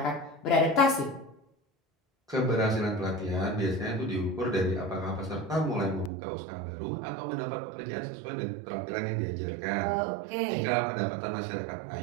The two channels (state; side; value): drops out; left; at 6.1 s